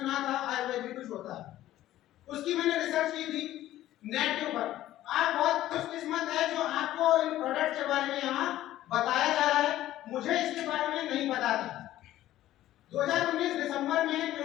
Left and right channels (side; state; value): right; quieter; 14.0 dB